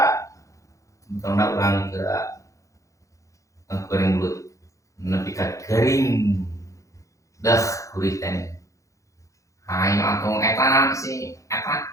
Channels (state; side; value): late; right; 0.15 ms